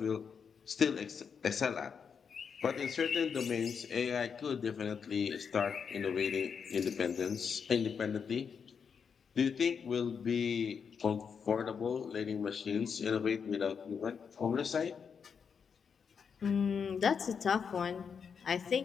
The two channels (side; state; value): right; quieter; 6.5 dB